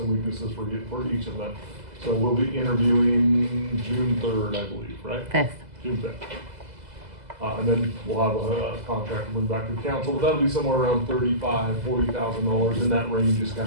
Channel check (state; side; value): late; left; 2.0 ms